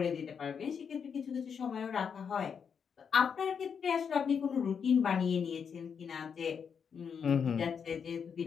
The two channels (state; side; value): quieter; right; 6.8 dB